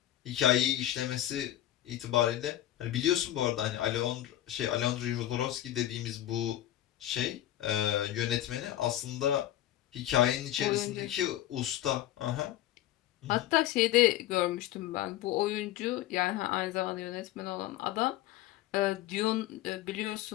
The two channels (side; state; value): right; quieter; 13.5 dB